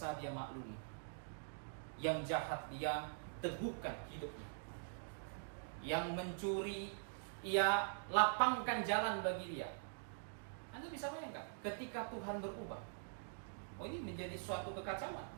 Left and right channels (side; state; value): left; silent; digital silence